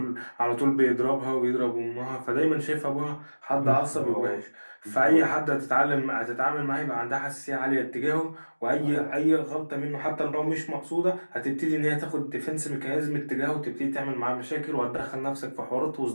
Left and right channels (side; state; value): both; inverted; correlation -1.00